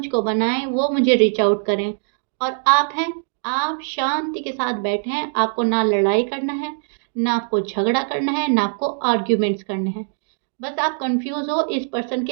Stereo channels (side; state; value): left; silent; digital silence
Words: बनाएं, वो मुझे रीच आउट करें। और आप हैं, आप शांति के साथ बैठे हैं, आपको ना लड़ाई करना है, ना आपको झगड़ा करना है, ना आपको आर्ग्यूमेंट्स करने हैं। बस आप कंफ्यूज हो इस पर्सन